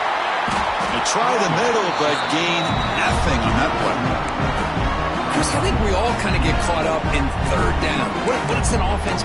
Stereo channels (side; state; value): both; identical; correlation 1.00